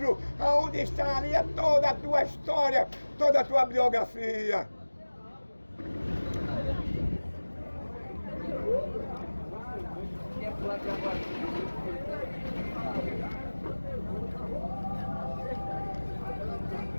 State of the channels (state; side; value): inverted; both; correlation -1.00